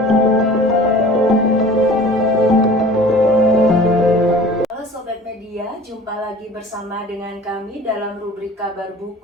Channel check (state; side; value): normal; both; correlation 0.44